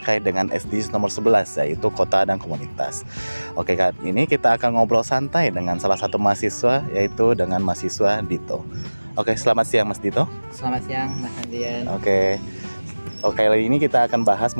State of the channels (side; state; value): both; inverted; correlation -1.00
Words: dengan SDGs nomor 11, yaitu kota dan komunitas. Oke, kali ini kita akan ngobrol santai dengan salah satu mahasiswa, yaitu dengan mahasiswa Dito. Oke, selamat siang Mas Dito. Selamat siang, Mas Andrian. Oke, kali ini kita akan bahas